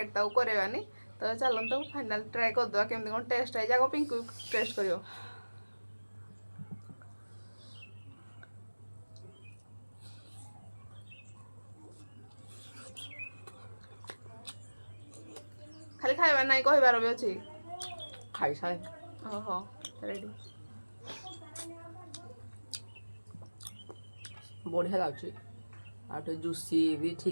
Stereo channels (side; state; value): both; inverted; correlation -1.00